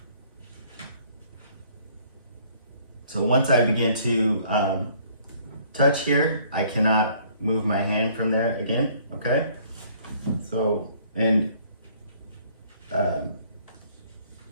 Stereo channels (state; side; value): inverted; both; correlation -0.59